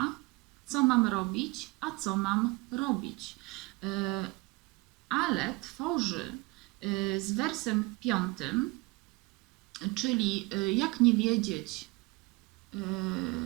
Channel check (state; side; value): quieter; left; 23.9 dB